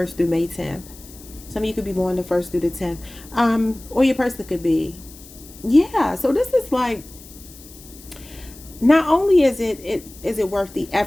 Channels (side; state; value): left; noise; hiss, 20 dB below the sound